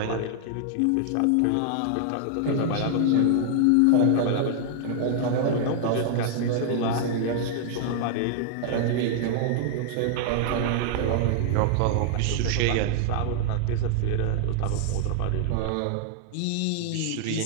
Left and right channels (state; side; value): different; both; correlation -0.01